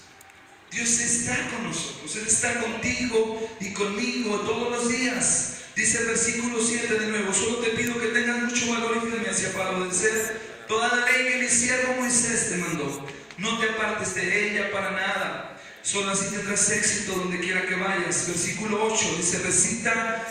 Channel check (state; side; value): identical; both; correlation 1.00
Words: Dios está con nosotros, Él está contigo y conmigo todos los días. Dice el versículo 7 de nuevo: solo te pido que tengas mucho valor y firmeza para obedecer toda la ley que mi siervo Moisés te mandó. No te apartes de ella para nada, solo así tendrás éxito donde quiera que vayas. Versículo 8 dice: